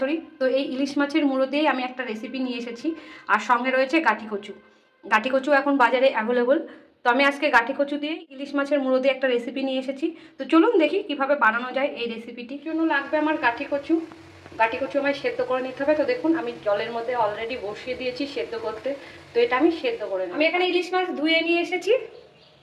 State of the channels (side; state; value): both; identical; correlation 1.00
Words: তো এই ইলিশ মাছের মুড়ো দিয়েই আমি একটা রেসিপি নিয়ে এসেছি। আর সঙ্গে রয়েছে গাঠি কচু। গাঠি কচু এখন বাজারে অ্যাভেলেবল, তো আমি আজকে গাঠি কচু দিয়ে ইলিশ মাছের মুড়ো দিয়ে একটা রেসিপি নিয়ে এসেছি। তো চলুন দেখি কিভাবে বানানো যায় এই রেসিপিটির জন্য লাগবে আমার গাঠি কচু। গাঠি কচু আমায় সেদ্ধ করে নিতে হবে। তো দেখুন আমি জলের মধ্যে অলরেডি বসিয়ে দিয়েছি সেদ্ধ করতে, তো এটা আমি সেদ্ধ করে নেব। আমি এখানে ইলিশ মাছ ধুয়ে নিয়ে এসেছি,